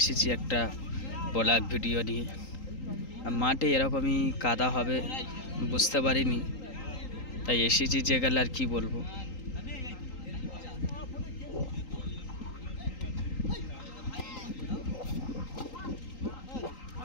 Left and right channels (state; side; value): late; right; 3.8 ms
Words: একটা ব্লগ ভিডিও নিয়ে। মাঠে এরকমই কাদা হবে বুঝতে পারিনি, তাই এসেছি যে গেলে আর কি বলবো।